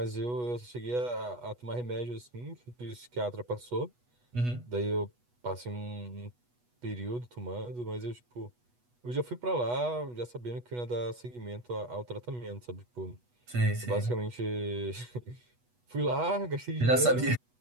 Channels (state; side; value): late; left; 8.2 ms